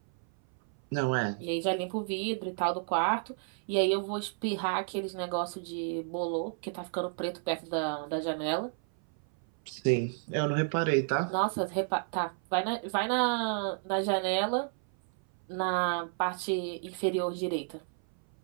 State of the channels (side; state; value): left; silent; 57 dB below the other